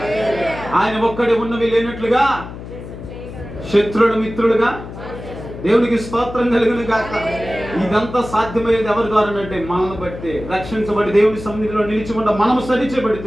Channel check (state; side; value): noise; left; hum, 12 dB below the sound